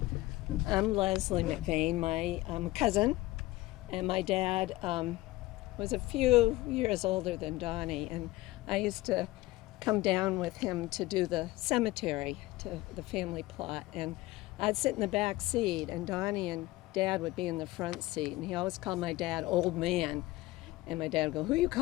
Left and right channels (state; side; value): quieter; right; 18.7 dB